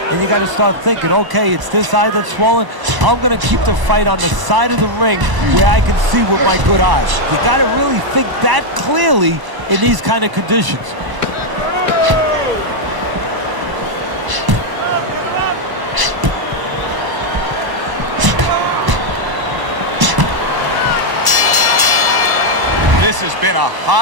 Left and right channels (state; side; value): late; left; 1.0 ms